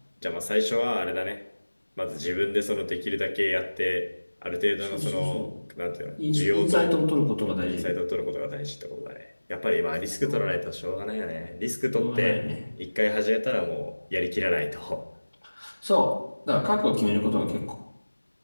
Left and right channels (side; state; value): both; inverted; correlation -1.00